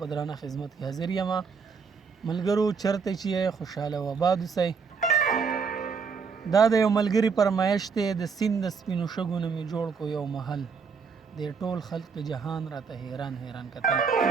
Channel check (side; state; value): left; quieter; 5.6 dB